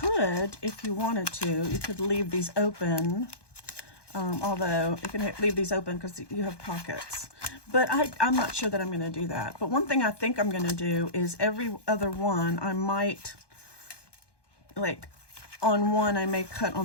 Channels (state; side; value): late; right; 1.2 ms